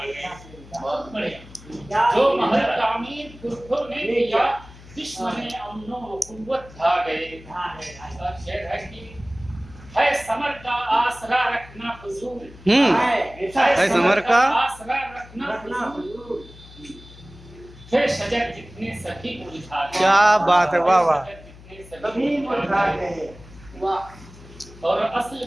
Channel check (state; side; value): noise; left; hum, 20 dB below the sound